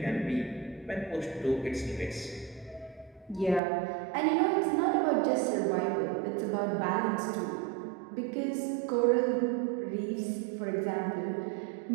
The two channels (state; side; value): drops out; left; at 3.6 s